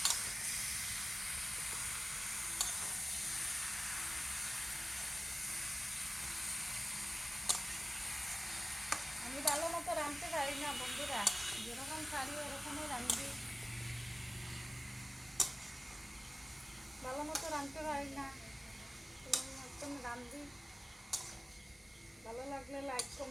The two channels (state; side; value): normal; both; correlation 0.97